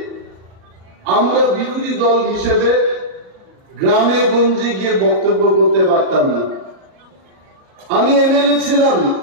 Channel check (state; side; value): late; left; 38 ms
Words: আমরা বিরোধী দল হিসেবে গ্রামে গঞ্জে গিয়ে বক্তব্য করতে পারতাম না। আমি এমএলএ ছিলাম